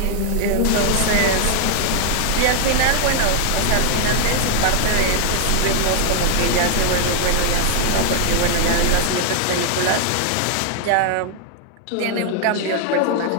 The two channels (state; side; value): different; both; correlation 0.00